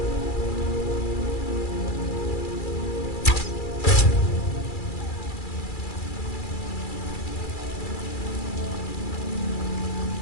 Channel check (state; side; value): late; right; 2.3 ms